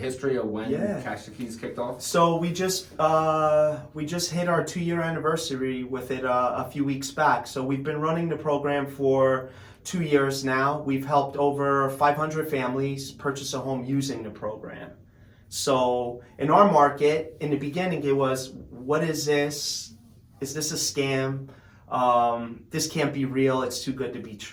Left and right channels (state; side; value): identical; both; correlation 1.00